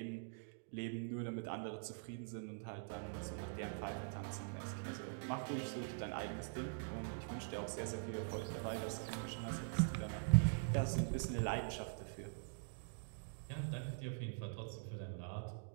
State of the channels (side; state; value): left; silent; digital silence